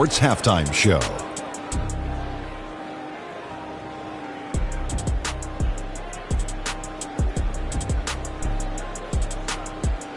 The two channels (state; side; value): identical; both; correlation 1.00